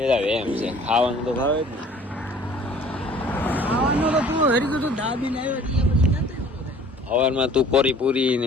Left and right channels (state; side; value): normal; both; correlation 0.51